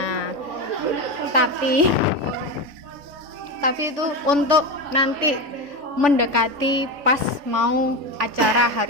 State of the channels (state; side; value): late; left; 3.5 ms